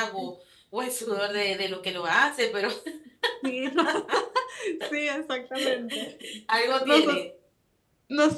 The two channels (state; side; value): identical; both; correlation 1.00